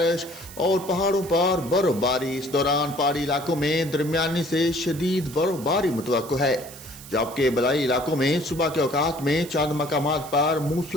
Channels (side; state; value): right; noise; hiss, 16 dB below the sound